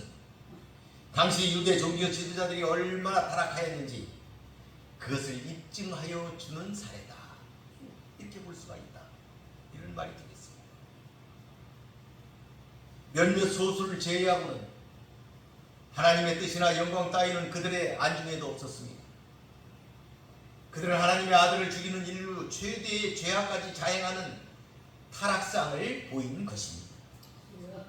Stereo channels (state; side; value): identical; both; correlation 1.00